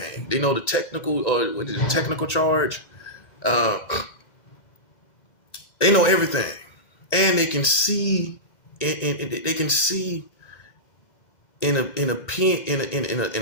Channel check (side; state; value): right; late; 1.9 ms